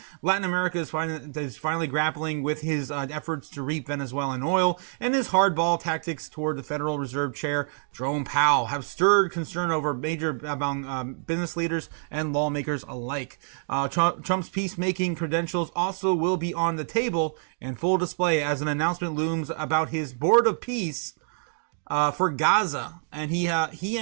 Latin America is finally grappling with his efforts to reap Venezuelan oil, and his hardball tactics toward the Federal Reserve Chair, Jerome Powell, have stirred concern over among business leaders and lawmakers alike. Trump's peacemaking credentials also will be on the table and full display as an announcement looms about his board of peace for Gaza, and he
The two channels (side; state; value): left; silent; 60 dB below the other